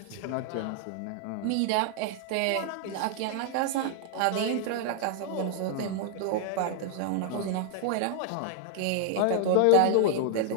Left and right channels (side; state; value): both; different; correlation 0.00